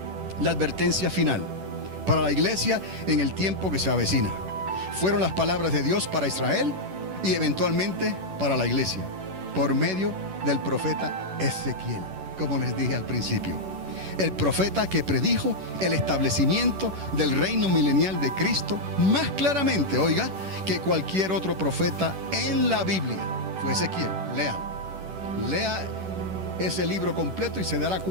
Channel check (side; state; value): left; late; 11 ms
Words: la advertencia final para la iglesia en el tiempo que se avecina. Fueron las palabras de Dios para Israel y eventualmente para la iglesia, por medio del profeta Ezequiel, como les dije al principio. El profeta que predijo el establecimiento del reino milenial de Cristo más claramente, oiga, que cualquier otro profeta en la Biblia. Fue Ezequiel. Lea ese libro completo y se dará